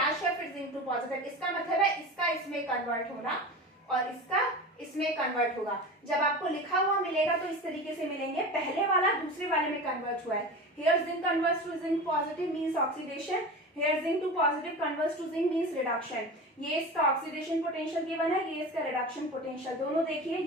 है फिर जिंक टू पॉजिटिव, इसका मतलब है इसका इसमें कन्वर्ट होना और इसका इसमें कन्वर्ट होगा। जब आपको लिखा हुआ मिलेगा तो इस तरीके से मिलेंगे, पहले वाला दूसरे वाले में कन्वर्ट हुआ है। Here zinc converts to zinc positive means oxidation, here zinc to positive converts to zinc means reduction. ये इसका ऑक्सीडेशन पोटेंशियल गिवन है, ये इसका रिडक्शन पोटेंशियल। दोनों देखिए,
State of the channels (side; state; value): both; normal; correlation 0.30